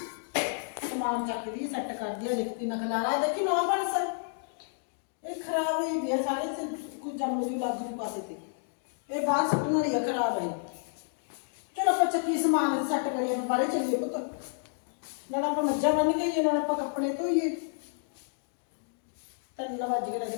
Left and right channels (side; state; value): right; silent; digital silence